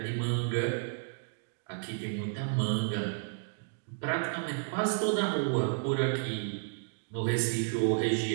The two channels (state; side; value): silent; left; digital silence